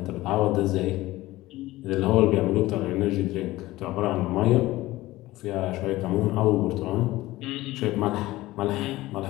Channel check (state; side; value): quieter; right; 17.8 dB